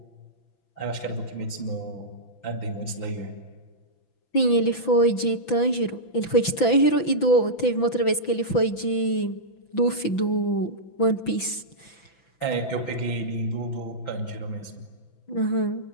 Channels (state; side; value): late; right; 6.0 ms